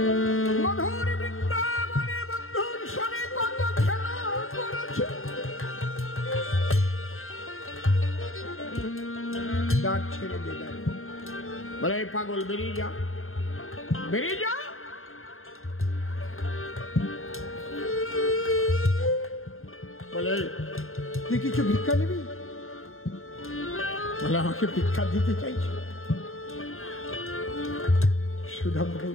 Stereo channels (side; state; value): right; late; 0.61 ms